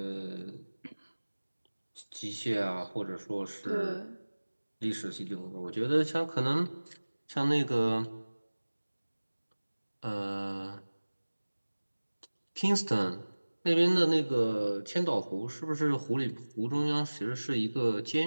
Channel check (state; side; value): inverted; both; correlation -1.00